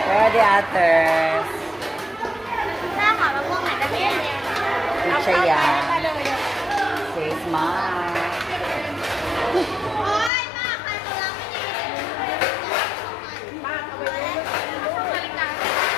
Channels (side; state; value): right; drops out; at 10.3 s